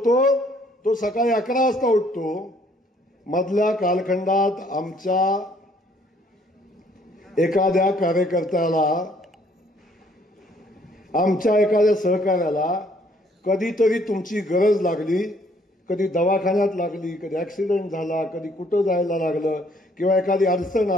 तो सकाळी 11 वाजता उठतो. मधल्या कालखंडात आमच्या एखाद्या कार्यकर्त्याला, आमच्या एखाद्या सहकार्याला कधीतरी तुमची गरज लागली, कधी दवाखान्यात लागली, कधी ऍक्सिडेंट झाला, कधी कुठं जायला लागलं किंवा एखादी अडचण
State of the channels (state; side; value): normal; both; correlation 0.63